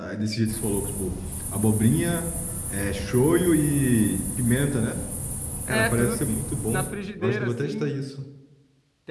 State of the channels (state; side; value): identical; both; correlation 1.00